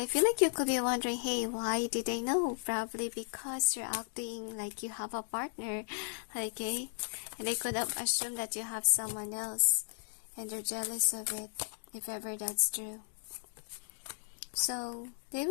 feel like you could be wondering, hey, why did they know? Probably because you're acting like you have a partner, okay? And they could have assumed that you have someone else, and they're jealous of it, if ever that's true. So, they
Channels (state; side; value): silent; right; digital silence